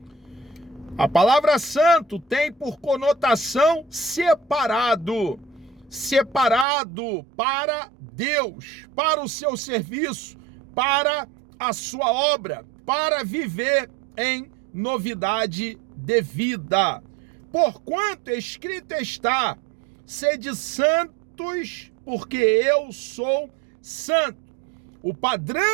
A palavra santo tem por conotação separado. Separado para Deus, para o seu serviço, para a sua obra, para viver em novidade de vida. Porquanto escrito está: sede santos, porque eu sou santo. O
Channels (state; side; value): drops out; left; at 6.7 s